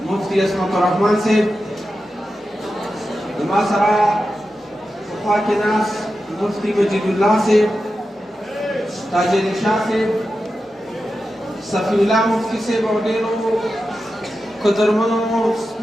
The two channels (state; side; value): normal; both; correlation 0.91